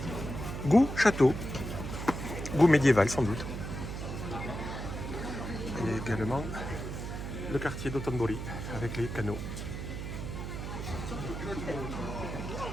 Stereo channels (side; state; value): right; noise; hum, 6 dB below the sound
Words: Goût château. Goût médiéval sans doute. Et également le quartier d'Otonbori avec les canaux.